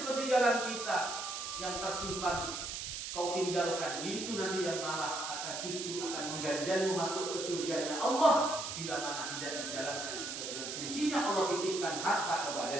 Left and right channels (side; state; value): right; noise; hiss, 5 dB below the sound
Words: kita yang tersimpan kau tinggalkan, itu nanti yang malah akan justru akan mengganjalmu masuk ke surganya Allah bila mana tidak dijalankan sesuai dengan fungsinya Allah titipkan harta kepada